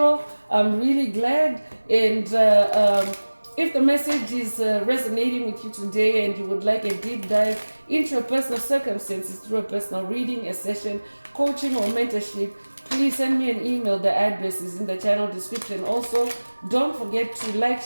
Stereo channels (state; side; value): inverted; both; correlation -1.00